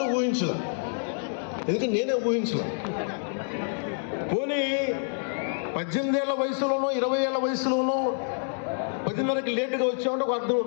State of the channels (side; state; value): right; silent; digital silence